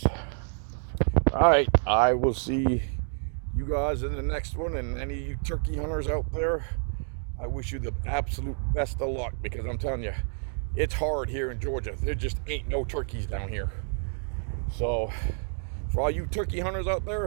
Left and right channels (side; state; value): left; silent; 59 dB below the other